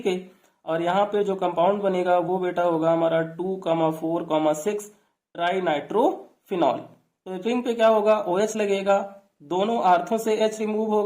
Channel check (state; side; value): identical; both; correlation 1.00